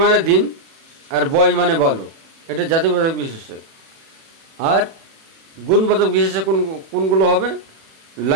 মানে দিন, আর বয় মানে বালক, এটা জাতিবাচক বিশেষ্য। আর গুণবাচক বিশেষ্য কোনগুলো হবে?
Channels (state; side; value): late; left; 37 ms